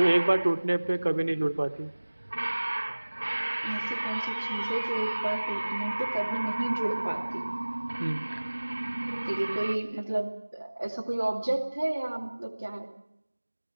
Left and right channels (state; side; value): inverted; both; correlation -1.00